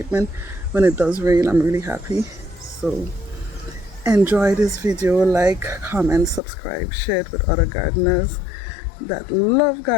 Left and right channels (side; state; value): right; drops out; at 6.4 s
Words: when it does rain, I'm really happy. So enjoy this video, like, comment, subscribe, share it with other gardeners that love